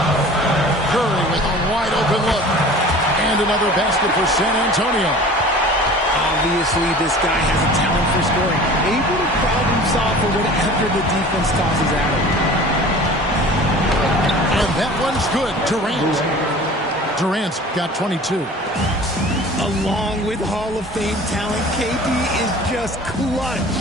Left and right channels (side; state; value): both; normal; correlation 0.42